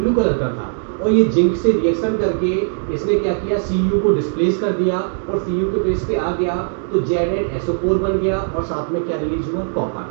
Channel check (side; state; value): left; silent; digital silence